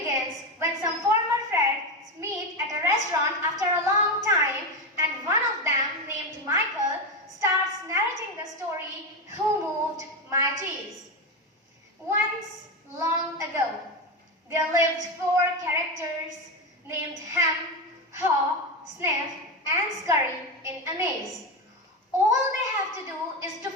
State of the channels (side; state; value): both; normal; correlation 0.14